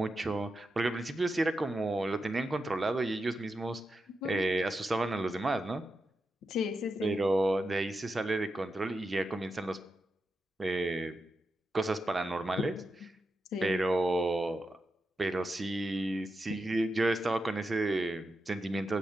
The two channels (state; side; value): normal; both; correlation 0.88